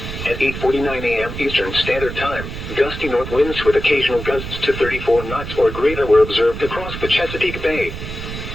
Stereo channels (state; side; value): noise; right; rumble, 8 dB below the sound